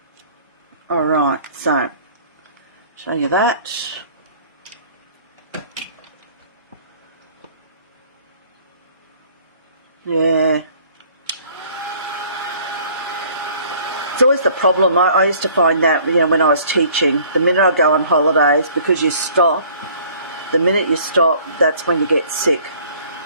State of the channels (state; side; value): inverted; both; correlation -0.54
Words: Alright, so show you that. Yeah. It's always the problem. I used to find that, you know, when I was teaching, the minute I go on holidays, because you stop, the minute you stop, that's when you get sick.